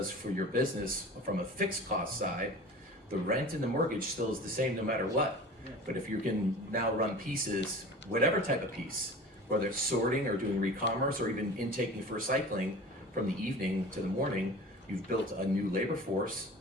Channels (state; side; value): normal; both; correlation 0.38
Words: for your business from a fixed cost side, the rent and the mortgage still is the same no matter what. But if you can now run pieces, whatever type of piece, whether it's sorting or doing re-commerce or even intaking for recycling from the evening to the morning, you've built a new labor force